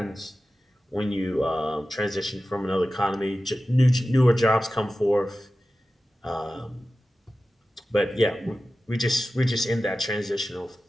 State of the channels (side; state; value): both; normal; correlation 0.95